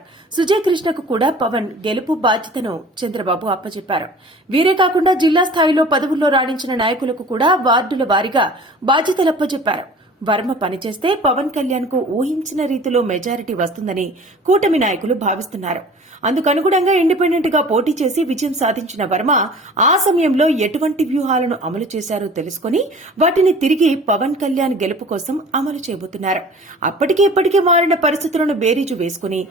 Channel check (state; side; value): normal; both; correlation 0.44